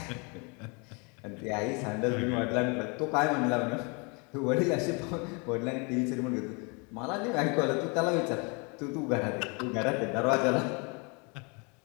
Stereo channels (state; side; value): quieter; right; 32.1 dB